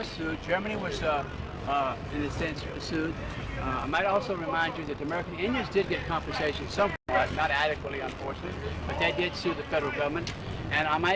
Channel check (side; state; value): both; identical; correlation 1.00